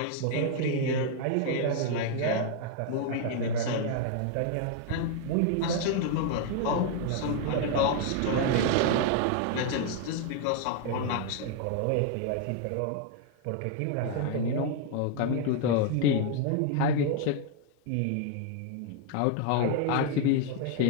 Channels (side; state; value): both; different; correlation 0.00